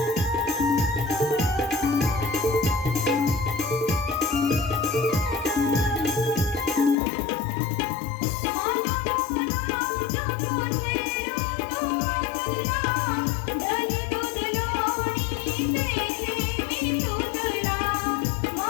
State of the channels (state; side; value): drops out; right; at 7.0 s